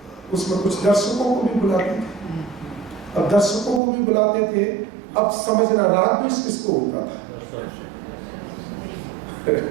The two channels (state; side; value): drops out; left; at 3.8 s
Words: उसमें कुछ दर्शकों को भी बुलाते थे, अब दर्शकों को भी बुलाते थे, अब समझना राग द्वेष किसको होता था?